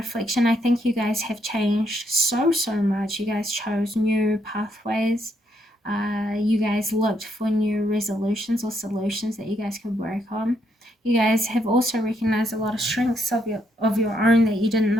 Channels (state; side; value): normal; both; correlation 0.75